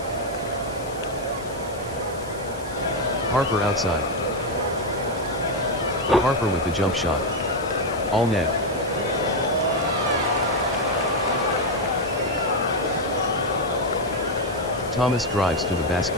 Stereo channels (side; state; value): left; noise; hiss, 19 dB below the sound